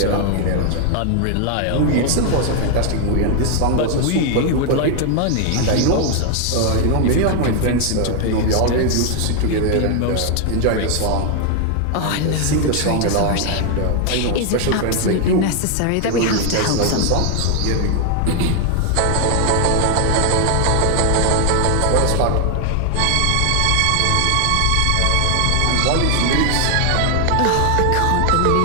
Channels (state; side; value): different; both; correlation 0.00